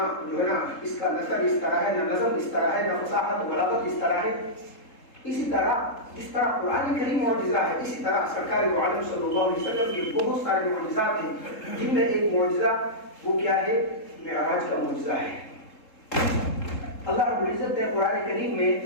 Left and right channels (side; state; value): right; late; 3.7 ms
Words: جو ہے نا اس کا نثر اس طرح ہے، نہ نظم اس طرح ہے، نہ فصاحت و بلاغت اس طرح ہے. اسی طرح جس طرح قرآن کریم معجزہ ہے، اسی طرح سرکار دو عالم صلی اللہ علیہ وسلم کے بہت سارے معجزات ہیں، جن میں ایک معجزہ وہ کیا ہے؟ معراج کا معجزہ ہے. اللہ رب العزت نے قرآن کریم میں